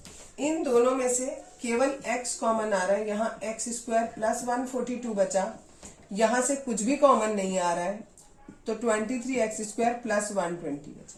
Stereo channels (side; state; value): both; identical; correlation 1.00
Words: इन दोनों में से केवल x कॉमन आ रहा है, यहाँ x² प्लस 142 बचा, यहाँ से कुछ भी कॉमन नहीं आ रहा है, तो 23x² प्लस 120 बचा।